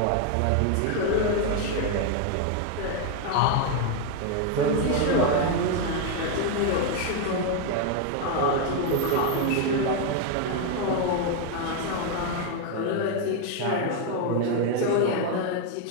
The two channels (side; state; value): both; different; correlation 0.01